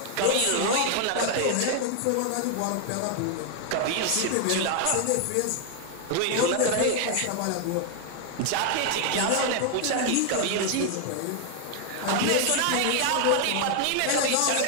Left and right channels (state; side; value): different; both; correlation 0.00